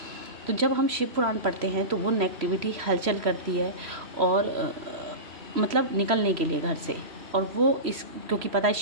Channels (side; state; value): left; late; 3.0 ms